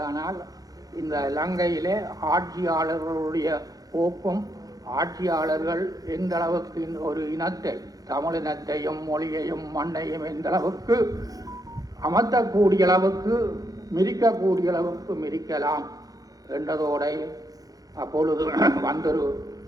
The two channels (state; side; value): late; left; 0.18 ms